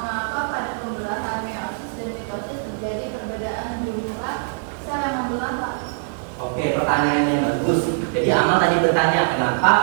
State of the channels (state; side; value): silent; left; 64 dB below the other